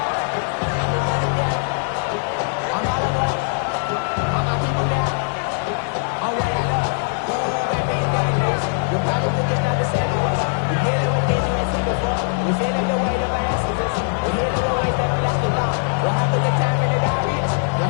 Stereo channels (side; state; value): right; silent; digital silence